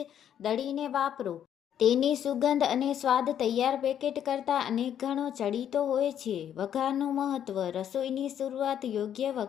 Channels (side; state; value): right; quieter; 9.7 dB